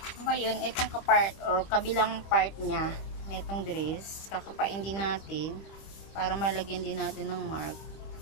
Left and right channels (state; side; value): late; right; 25 ms